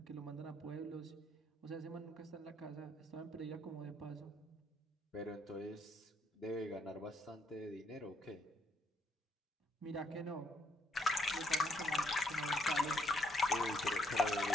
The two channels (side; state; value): both; normal; correlation 0.72